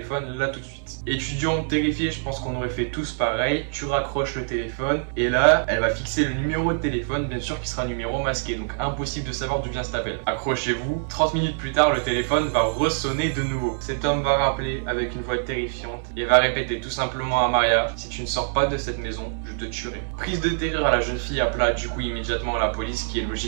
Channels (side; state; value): left; silent; 62 dB below the other